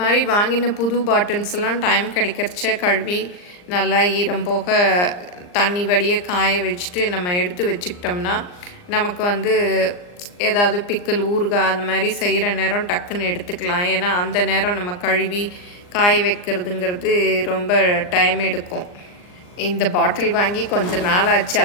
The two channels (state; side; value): late; right; 39 ms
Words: மாதிரி வாங்கின புது பாட்டில்ஸ் எல்லாம் டைம் கிடைக்கிறச்ச கழுவி நல்லா ஈரம் போக தண்ணி வடிய காய வச்சுட்டு நம்ம எடுத்து வச்சுக்கிட்டோம்னா நமக்கு ஏதாவது பிக்கல் ஊறுகாய் அந்த மாதிரி செய்கிற நேரம் டக்குன்னு எடுத்துக்கலாம். ஏன்னா அந்த நேரம் நம்ம கழுவி காய வைக்கிறதுங்கிறது ரொம்ப டைம் எடுக்கும். இந்த பாட்டில் வாங்கி கொஞ்சம் நாள் ஆச்சு,